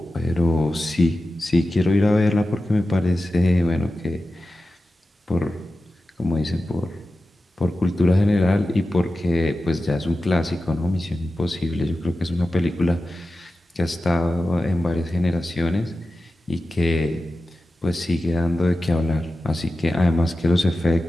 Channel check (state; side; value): normal; both; correlation 0.93